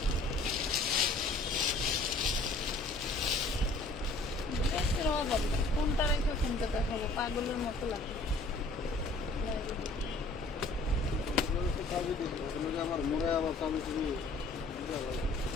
কোনটা রেখে কোনটা দেখাবো, পাগলের মতো লাগে।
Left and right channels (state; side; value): quieter; right; 3.1 dB